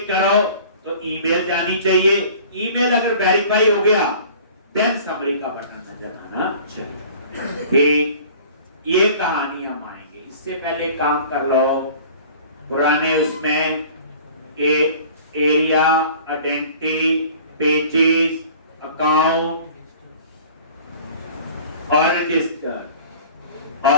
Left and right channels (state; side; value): inverted; both; correlation -0.46